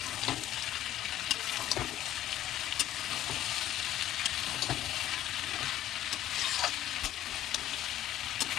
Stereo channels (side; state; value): right; quieter; 12.9 dB